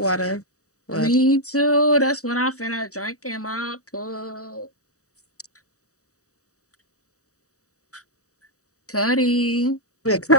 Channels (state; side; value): late; right; 0.66 ms